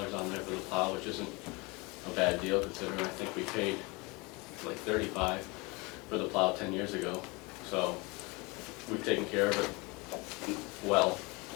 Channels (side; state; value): right; quieter; 26.5 dB